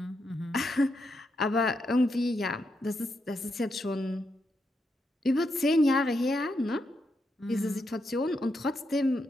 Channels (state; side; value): normal; both; correlation 0.82